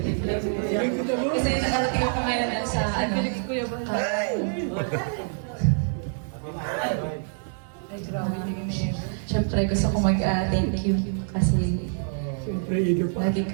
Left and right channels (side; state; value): left; silent; 61 dB below the other